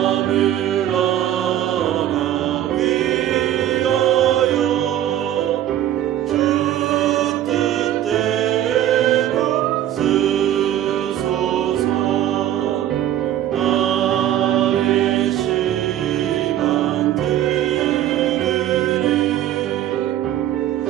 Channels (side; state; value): left; quieter; 12.0 dB